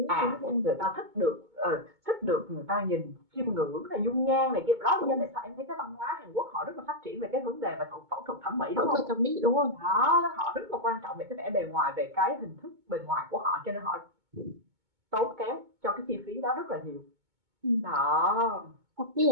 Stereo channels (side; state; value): left; late; 2.2 ms